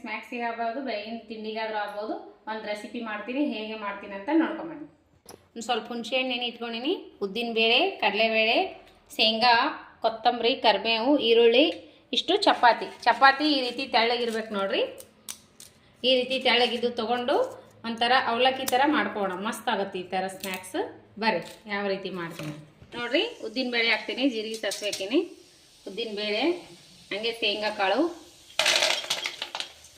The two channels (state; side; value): identical; both; correlation 1.00